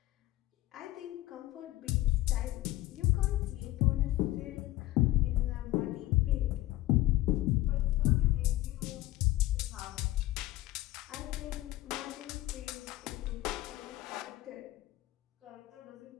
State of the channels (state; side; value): quieter; right; 16.9 dB